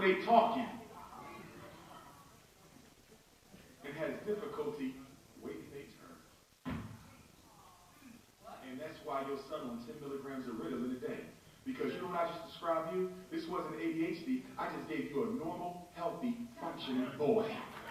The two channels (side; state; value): both; identical; correlation 1.00